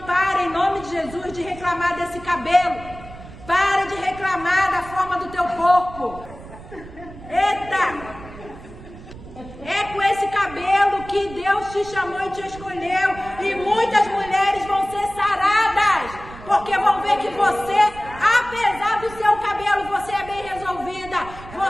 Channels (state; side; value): noise; right; rumble, 16 dB below the sound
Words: em nome de Jesus, de reclamar desse cabelo. Para de reclamar da forma do teu corpo. Eita! É com esse cabelo que Deus te chamou e te escolheu. E muitas mulheres vão ser saradas. Porque vão ver que você, apesar do seu cabelo, você é bem resolvida.